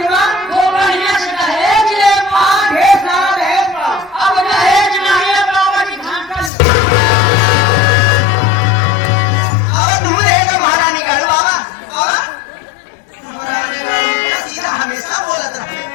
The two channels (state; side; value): drops out; right; at 6.5 s